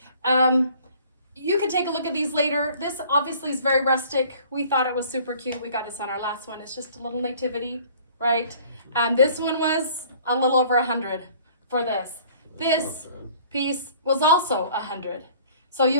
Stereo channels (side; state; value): both; inverted; correlation -0.53